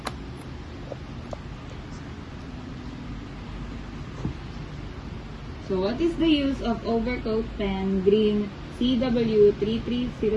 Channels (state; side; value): identical; both; correlation 1.00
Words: So what is the use of Overcoat Pen Green